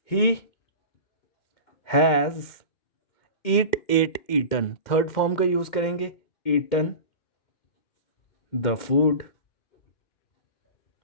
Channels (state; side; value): late; right; 2.1 ms